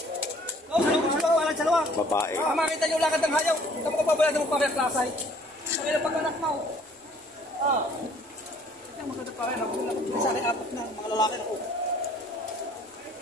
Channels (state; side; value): normal; both; correlation 0.57